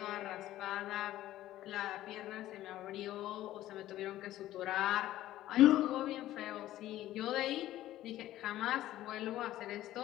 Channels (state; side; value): quieter; right; 14.3 dB